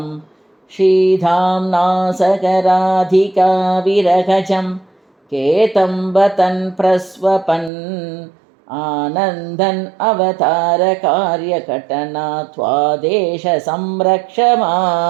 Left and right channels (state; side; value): drops out; left; at 7.7 s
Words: शीधाम्ना सगराधिका विरहजं केतं वतन् प्रस्वपन् आनन्दन् अवतार कार्यकटना त्वादेश संरक्ष